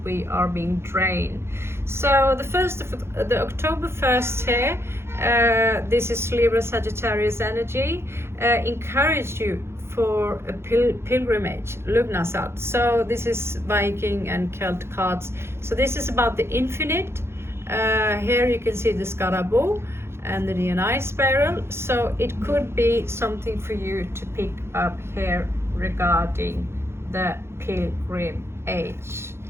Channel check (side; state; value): left; late; 0.12 ms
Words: we are being drained. So the October 1st here, this is Libra Sagittarius energy, encourage you for a pilgrimage, Lugnasat. So this is Viking and Celt cards. So this is about the infinite. Here you can see the Scaraboo and the DNI spiral. So it could be something for you to pick up here regarding the pilgrim age.